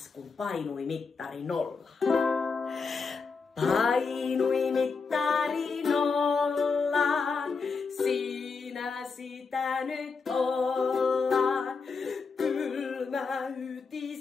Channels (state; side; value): quieter; right; 4.8 dB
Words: kun painui mittari nollaan. Painui mittari nollaan, siinä sitä nyt ollaan. Kylmä